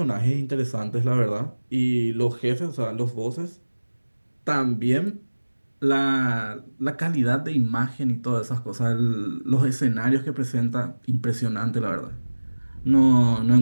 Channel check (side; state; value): both; inverted; correlation -1.00